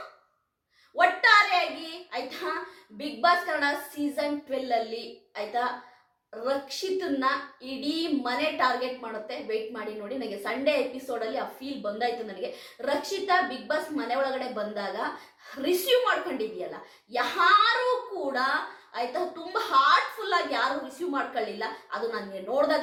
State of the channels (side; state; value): both; identical; correlation 1.00